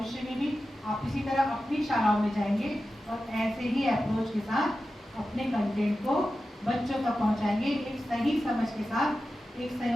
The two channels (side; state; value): both; normal; correlation 0.93